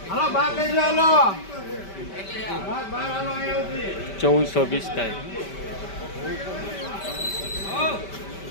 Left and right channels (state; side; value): late; right; 5.1 ms